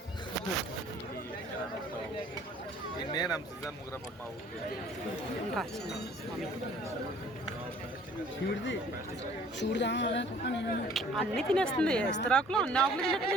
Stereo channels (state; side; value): normal; both; correlation 0.54